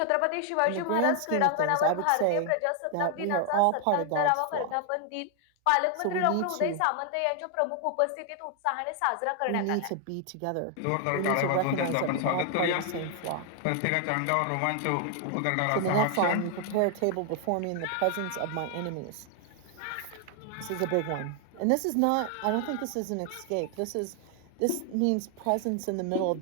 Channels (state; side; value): different; both; correlation 0.00